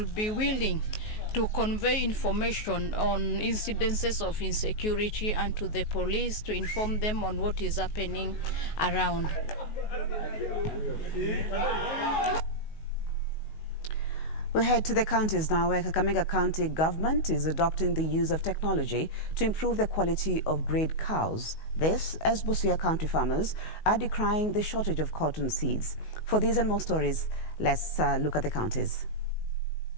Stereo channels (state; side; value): late; right; 19 ms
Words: be willing to convey information on incidences of insecurity and to the police to inform them on what is happening around. We head to the counties now, where Kakamega County government is adopting the use of technology to improve the quality of grade cows. This, as Busia County farmers are decrying the shortage of cotton seeds. For these and more stories, let's look at the counties.